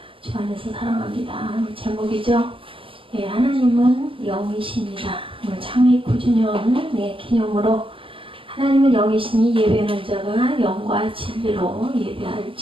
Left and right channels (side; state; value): left; late; 0.25 ms